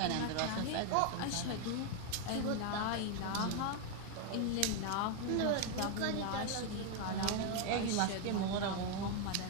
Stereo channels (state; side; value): different; both; correlation 0.01